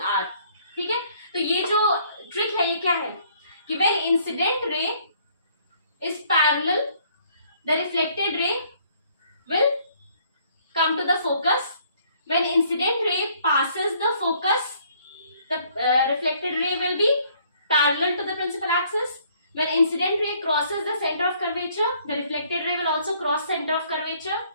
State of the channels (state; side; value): inverted; both; correlation -0.63